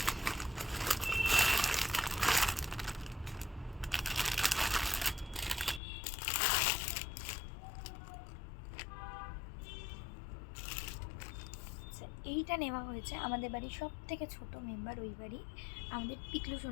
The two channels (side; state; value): right; drops out; at 5.8 s